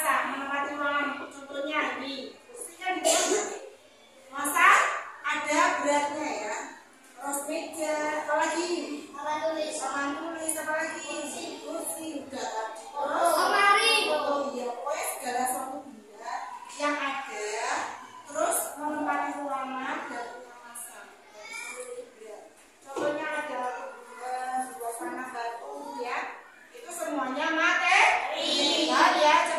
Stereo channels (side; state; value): both; identical; correlation 1.00